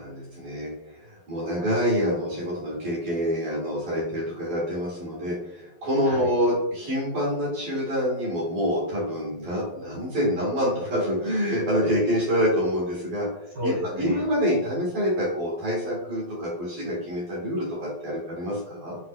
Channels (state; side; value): late; left; 12 ms